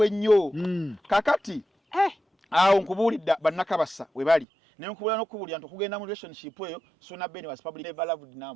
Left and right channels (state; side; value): drops out; left; at 4.5 s